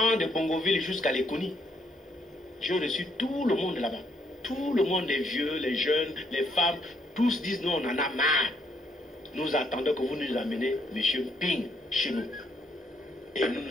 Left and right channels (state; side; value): normal; both; correlation 0.72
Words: de Bongoville jusqu'à Lekoni. J'ai reçu tout le monde là-bas. Tout le monde, les vieux, les jeunes, les femmes, tous disent nous on en a marre. Nous attendons que vous nous amenez M. Ping chez nous. Et nous nous